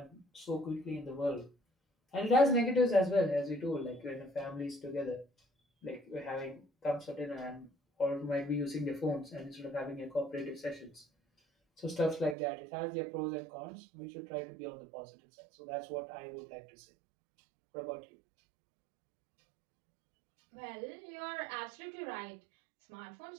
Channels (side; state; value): left; drops out; at 12.4 s